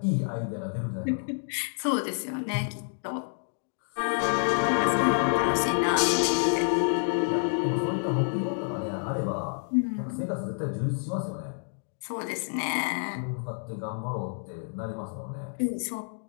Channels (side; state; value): right; silent; 59 dB below the other